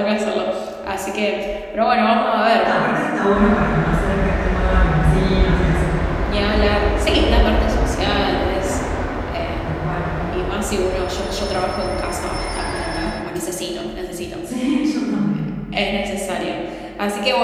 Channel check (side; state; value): both; identical; correlation 1.00